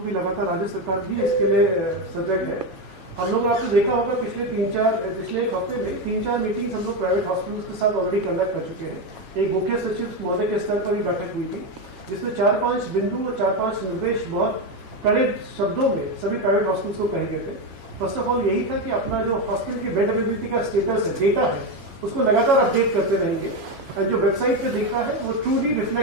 भी लगातार, राज्य सरकार भी इसके लिए सजग है। हम लोग आपने देखा होगा पिछले एक हफ्ते में 3-4 मीटिंग्स हम लोग प्राइवेट हॉस्पिटल्स के साथ ऑलरेडी कंडक्ट कर चुके हैं। एक मुख्य सचिव महोदय के स्तर पर भी बैठक हुई थी, जिसमें 4-5 बिंदु और 4-5 निर्देश बहुत कड़े शब्दों में सभी प्राइवेट हॉस्पिटल्स को कहे गए थे। फर्स्ट ऑफ ऑल यही था कि अपना जो हॉस्पिटल की बेड अवेलेबिलिटी का स्टेटस है, डेटा है, उसको लगातार अपडेट करते रहेंगे और जो वेबसाइट पे दिखता है वो ट्रूली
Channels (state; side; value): late; left; 7.2 ms